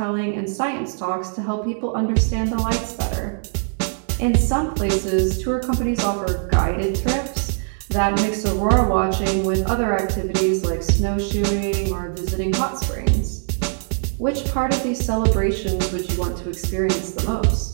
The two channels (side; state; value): left; silent; 64 dB below the other